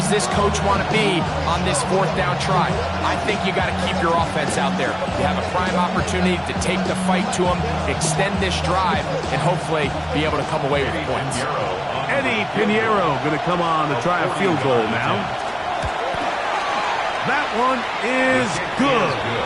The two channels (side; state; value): both; identical; correlation 1.00